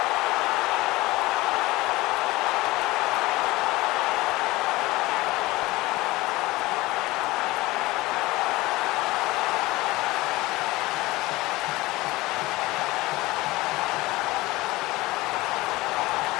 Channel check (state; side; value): quieter; right; 19.9 dB